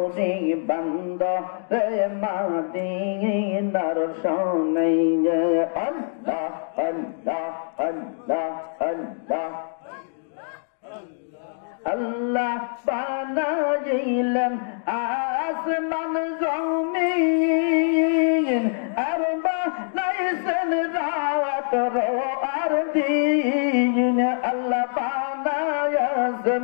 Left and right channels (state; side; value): silent; right; digital silence